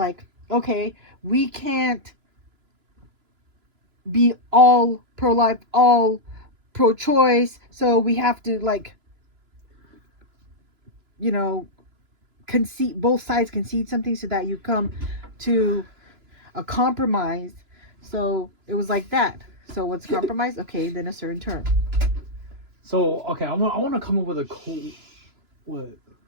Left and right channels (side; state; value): left; late; 2.9 ms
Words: okay, we can't be all pro-life, all pro-choice, so we have to like, concede, both sides concede something so that you come to a compromise. So it was like that. So what's compromise? Okay, then a certain term. So okay, I want to come up with a cool. What?